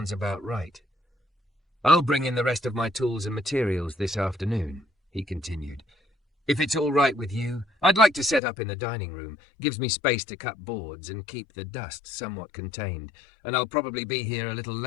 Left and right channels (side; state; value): right; drops out; at 8.4 s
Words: about right. I'll bring in the rest of my tools and materials this afternoon, he continued. If it's all right with you, I'd like to set up in the dining room. Gives me space to cut boards and keep the dust somewhat contained. And I'll probably be here a little